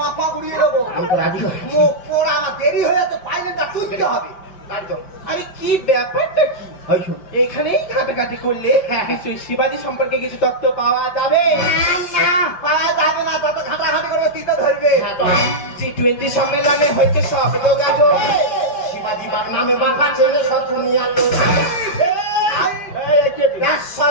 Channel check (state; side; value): late; right; 5.0 ms